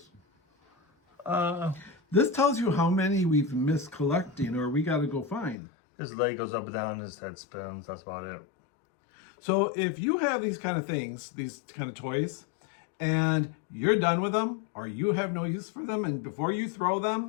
This tells you how many we've missed collecting, or we got to go find. his leg goes up and down, his head spins. That's about it. So if you have these kind of things, these kind of toys, and you're done with them, or you have no use for them, and before you throw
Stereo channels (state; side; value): drops out; right; at 5.6 s